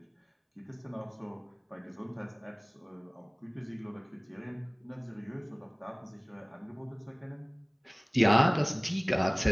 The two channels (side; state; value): both; identical; correlation 1.00